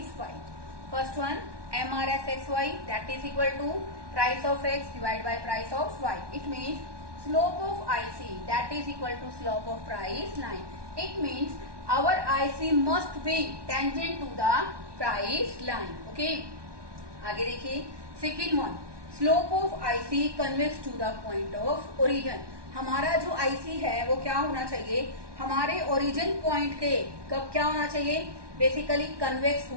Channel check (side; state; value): left; late; 1.2 ms